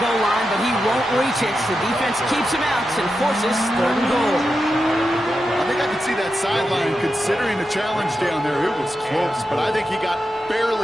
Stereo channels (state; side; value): normal; both; correlation 0.89